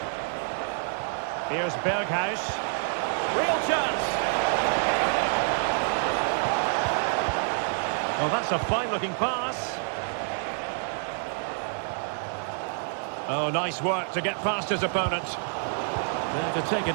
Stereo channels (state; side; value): silent; left; 60 dB below the other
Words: Here's Berghuis. Real chance. Well, that's a fine-looking pass. Oh, nice work to get past his opponent. There to take